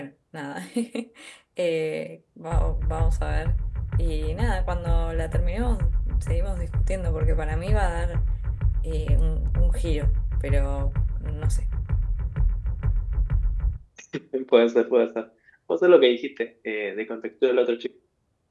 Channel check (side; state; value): both; identical; correlation 1.00